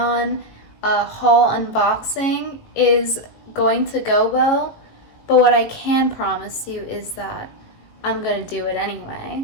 haul unboxing is going to go well, but what I can promise you is that I'm gonna do it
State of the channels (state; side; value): late; right; 18 ms